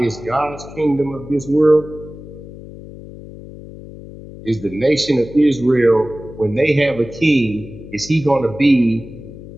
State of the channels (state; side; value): noise; left; hum, 15 dB below the sound